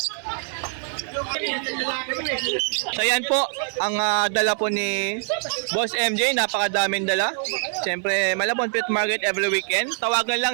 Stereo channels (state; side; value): silent; left; 63 dB below the other